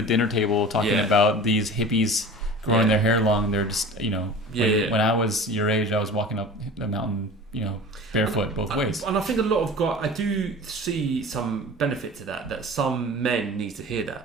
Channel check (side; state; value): both; normal; correlation 0.38